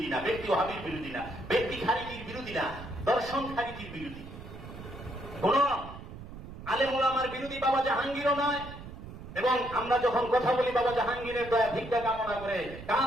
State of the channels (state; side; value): noise; right; rumble, 13 dB below the sound